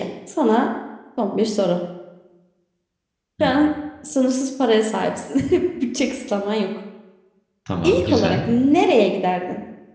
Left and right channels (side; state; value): both; identical; correlation 1.00